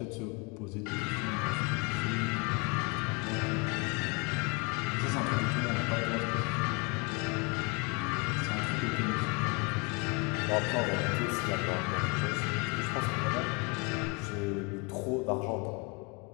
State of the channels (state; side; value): quieter; right; 30.2 dB